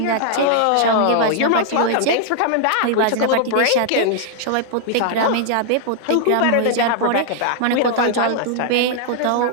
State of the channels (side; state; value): both; different; correlation -0.01